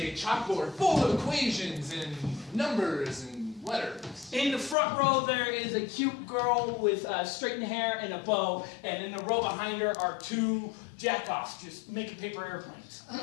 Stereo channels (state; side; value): drops out; right; at 4.8 s